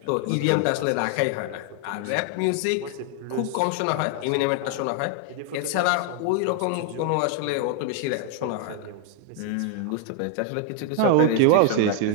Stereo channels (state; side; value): different; both; correlation 0.00